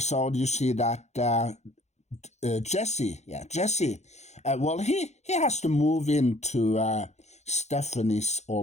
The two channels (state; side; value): late; right; 0.33 ms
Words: you see that Jesse, he has to move into Stephanie's